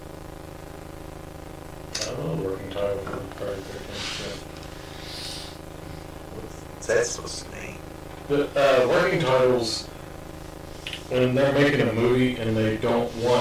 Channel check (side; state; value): both; identical; correlation 1.00